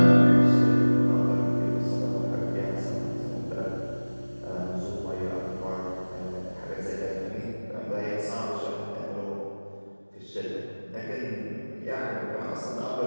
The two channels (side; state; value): both; inverted; correlation -1.00